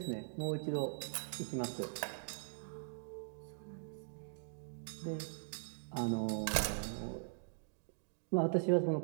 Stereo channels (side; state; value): left; silent; digital silence